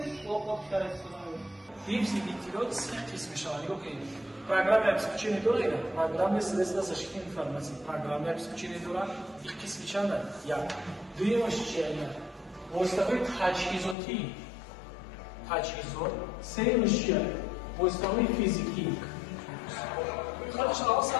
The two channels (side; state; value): right; drops out; at 14.0 s